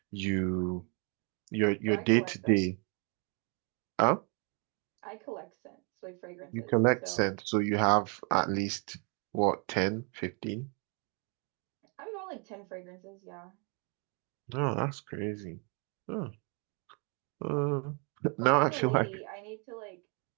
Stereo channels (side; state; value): left; quieter; 35.9 dB